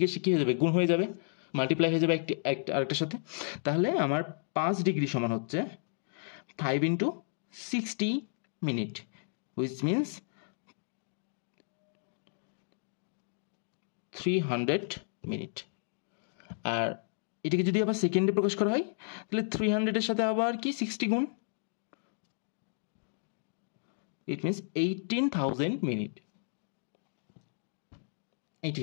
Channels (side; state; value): right; silent; digital silence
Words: কি হয়ে যাবে? গুণ হয়ে যাবে, মাল্টিপ্লাই হয়ে যাবে একটা আরেকটার সাথে। তাহলে আমার 5 ডিগ্রি সমান হচ্ছে 5 into 60 minute, which means 300 minute. আর এটাকে যদি আবার সেকেন্ডে প্রকাশ করা হয় তাহলে 300-এর সাথে আবার কি 60 গুণ, ইট মিনস 18,000 মিনিট। এটি